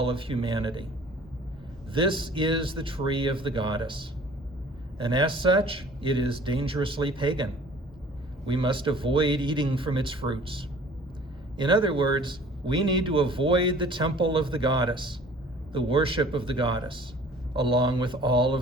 of humanity. This is the tree of the goddess. And as such, it is dangerously pagan. We must avoid eating from its fruits. In other words, we need to avoid the temple of the goddess, the worship of the goddess, along with all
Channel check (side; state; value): both; normal; correlation 0.50